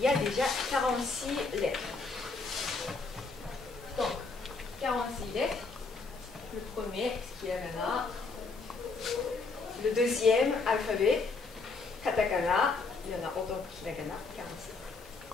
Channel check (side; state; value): right; quieter; 4.1 dB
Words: y a déjà 46 lettres. Donc, 46 lettres. Le premier, hiragana. Le deuxième alphabet, katakana. Il y en a autant que hiragana, 46.